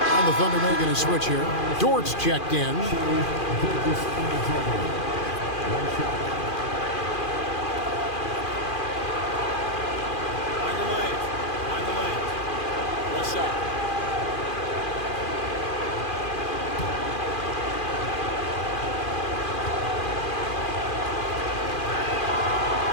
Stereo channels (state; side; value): late; right; 2.4 ms